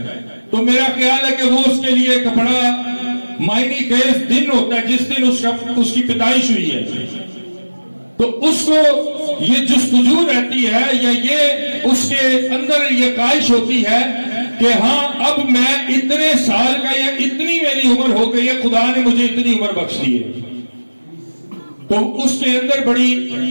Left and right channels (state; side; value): inverted; both; correlation -1.00